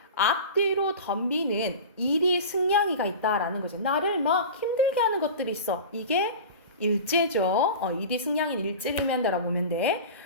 앞뒤로 덤비는 일이 승냥이가 있다라는 거죠. 나를 막 힘들게 하는 것들이 있어. 이게 일제죠. 일이 승냥이는 일제를 의미한다라고 보면 돼.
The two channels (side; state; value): both; inverted; correlation -0.33